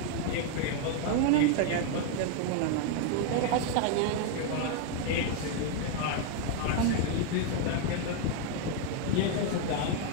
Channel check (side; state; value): both; different; correlation 0.01